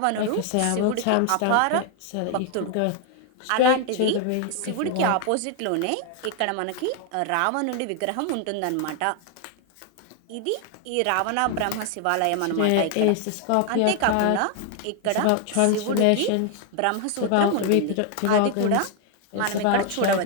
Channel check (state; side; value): different; both; correlation 0.00